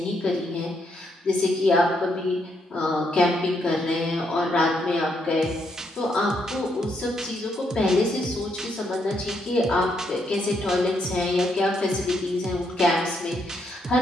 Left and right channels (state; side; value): normal; both; correlation 0.76